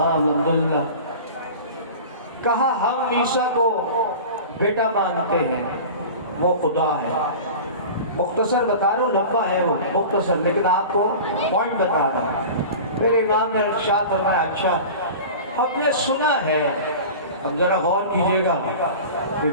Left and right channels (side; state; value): both; inverted; correlation -0.35